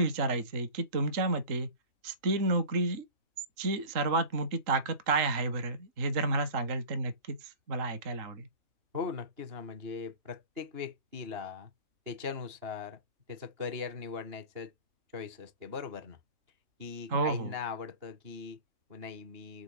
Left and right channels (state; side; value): late; left; 3.7 ms